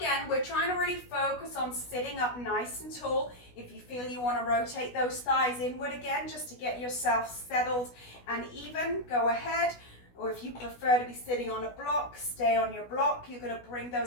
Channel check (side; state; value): right; late; 16 ms